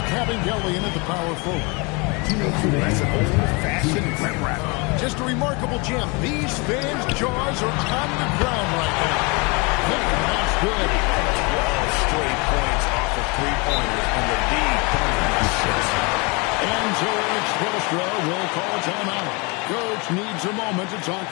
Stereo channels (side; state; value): right; quieter; 29.3 dB